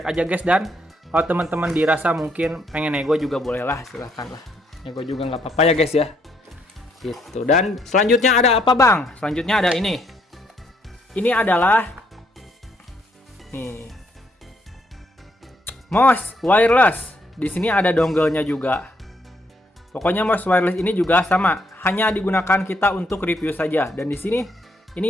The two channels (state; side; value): normal; both; correlation 0.72